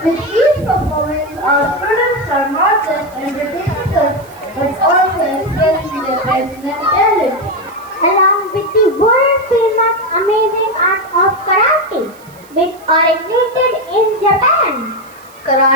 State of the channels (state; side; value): noise; right; hiss, 26 dB below the sound